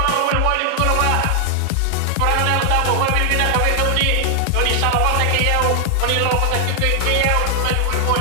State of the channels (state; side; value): different; both; correlation 0.00